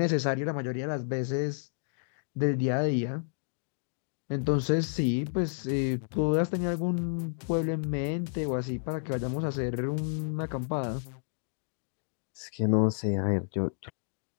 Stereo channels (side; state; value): right; silent; digital silence